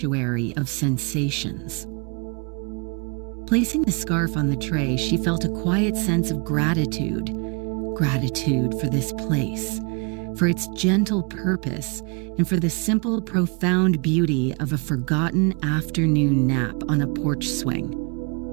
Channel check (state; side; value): quieter; left; 33.4 dB